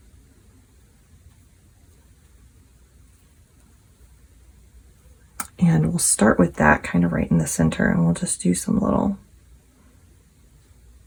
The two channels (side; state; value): both; identical; correlation 1.00